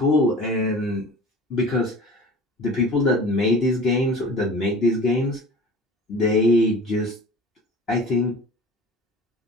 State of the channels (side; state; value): both; normal; correlation 0.40